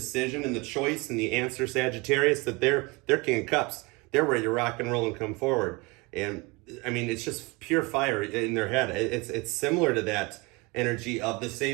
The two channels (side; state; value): left; quieter; 26.3 dB